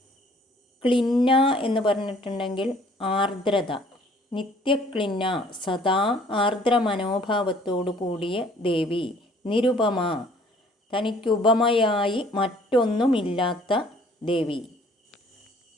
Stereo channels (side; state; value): both; normal; correlation 0.57